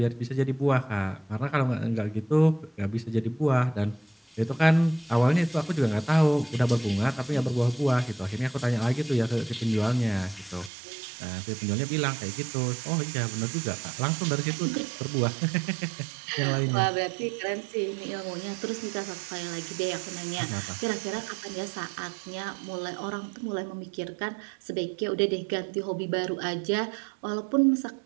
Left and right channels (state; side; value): drops out; left; at 10.7 s